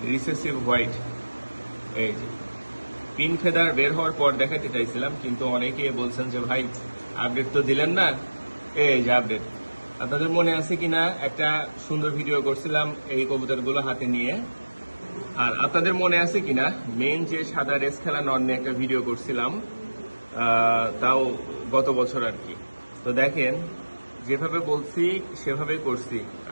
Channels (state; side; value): inverted; both; correlation -1.00